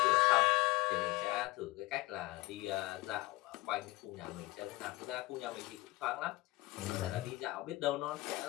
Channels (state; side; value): quieter; right; 19.7 dB